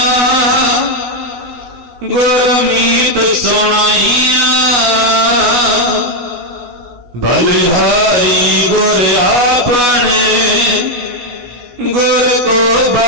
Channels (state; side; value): late; left; 16 ms